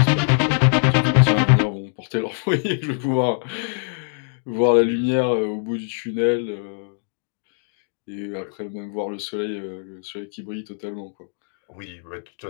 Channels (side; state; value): right; silent; digital silence